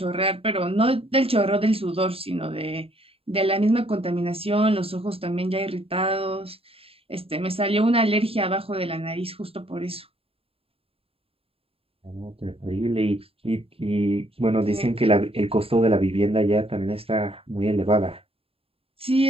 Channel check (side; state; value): left; late; 0.27 ms